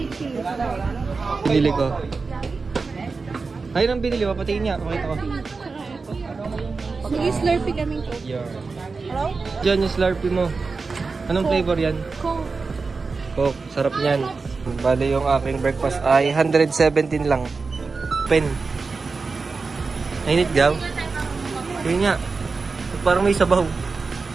cheese. Binili ko. Ayun ang binili. Papatingin niya. Pakita ko. Nag-slurpee kami ko. Yeah. Hello? Diyan yung slurpee mo. Anong flavor yan? Coke. Coke. Sarap niyan. Bale yung aking breakfast ay 117 lang. Pen. Nainit daw. Yun nga. Parang may sabaw.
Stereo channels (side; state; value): left; quieter; 4.3 dB